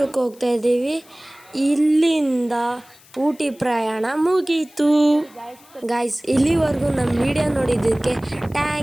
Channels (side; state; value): left; noise; hiss, 26 dB below the sound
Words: ಹೋಗ್ತಾ ಇದ್ದೀವಿ. ಇಲ್ಲಿಂದ ಊಟಿ ಪ್ರಯಾಣ ಮುಗೀತು. ಗಾಯ್ಸ್, ಇಲ್ಲಿವರೆಗೂ ನಮ್ಮ ವಿಡಿಯೋ ನೋಡಿದ್ದಕ್ಕೆ